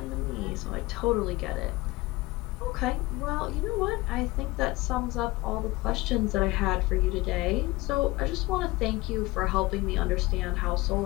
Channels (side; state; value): right; quieter; 21.0 dB